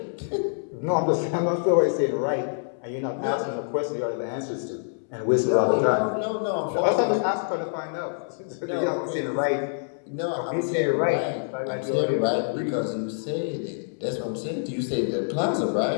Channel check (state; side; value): silent; right; 61 dB below the other